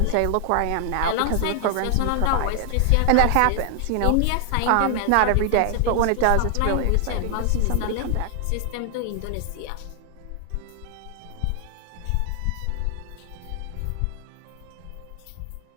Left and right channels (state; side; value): different; both; correlation 0.00